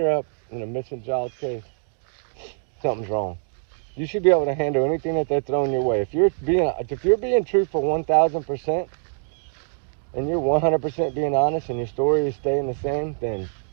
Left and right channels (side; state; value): left; silent; digital silence